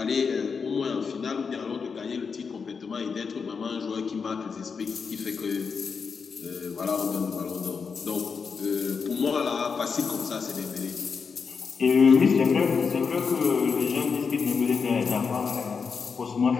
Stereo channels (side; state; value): right; quieter; 5.6 dB